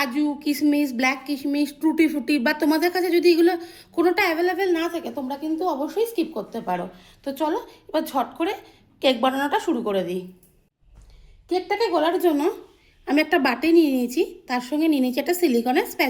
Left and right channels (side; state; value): both; identical; correlation 1.00